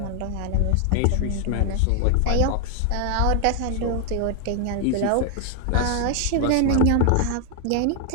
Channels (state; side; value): different; both; correlation 0.00